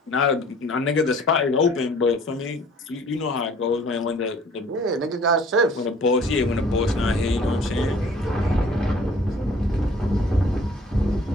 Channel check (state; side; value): normal; both; correlation 0.53